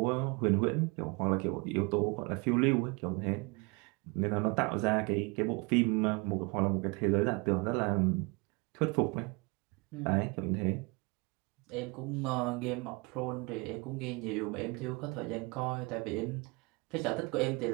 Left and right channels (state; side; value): quieter; left; 28.4 dB